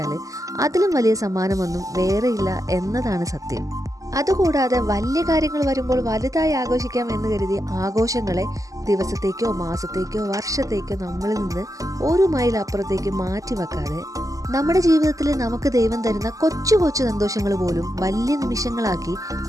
അതിലും വലിയ സമ്മാനമൊന്നും വേറെയില്ല എന്നതാണ് സത്യം. അതുകൂടാതെ വലിയ കാര്യങ്ങൾ വരുമ്പോൾ വലുതായി ആഘോഷിക്കാം എന്ന് കരുതി ആഘോഷങ്ങളെ ദിവസത്തേക്കോ മാസത്തേക്കോ വർഷത്തേക്കോ നമ്മളിൽ നിന്ന് ഒരു മൈൽ അപ്പുറത്തേക്ക് മാറ്റി വെക്കാതെ നമ്മുടെ ജീവിതത്തിൽ നമുക്ക് ദൈവം തരുന്ന കൊച്ചു കൊച്ചു സന്തോഷങ്ങൾ പോലും വലിയ നിമിഷങ്ങളാക്കി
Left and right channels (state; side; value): late; left; 0.16 ms